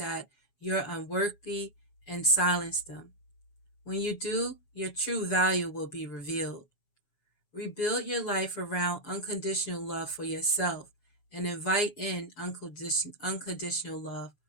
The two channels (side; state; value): right; late; 7.3 ms